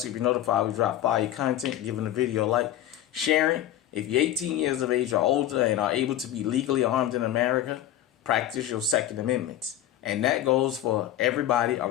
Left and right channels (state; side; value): quieter; right; 12.3 dB